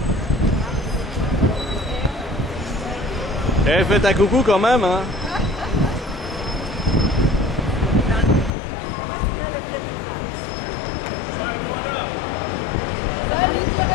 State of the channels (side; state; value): right; drops out; at 8.5 s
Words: Eh, faites un coucou quand même, hein. Salut